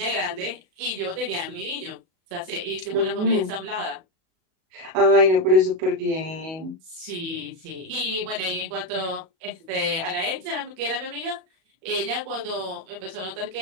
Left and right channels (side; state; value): left; late; 37 ms